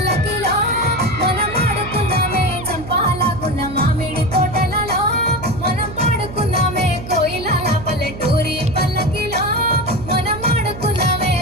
మనం ఆడుకున్నామే చంపాలాగున్న మామిడి తోటలలో మనం పాడుకున్నామే కోయిలాల పల్లెటూరి పల్లకిలో మనం ఆడుకున్నామే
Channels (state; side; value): noise; right; hum, 12 dB below the sound